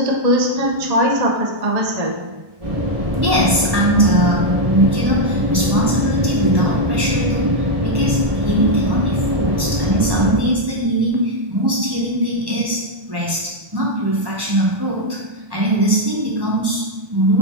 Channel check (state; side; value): late; left; 1.1 ms